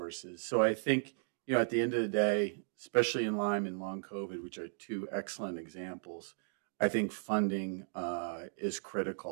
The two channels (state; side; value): silent; left; digital silence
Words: So I think, at the end of the day, especially in Lyme and long COVID, which are two excellent examples, I think funding is